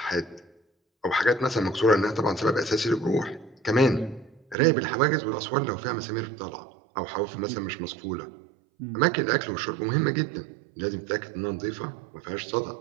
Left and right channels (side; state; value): left; drops out; at 4.5 s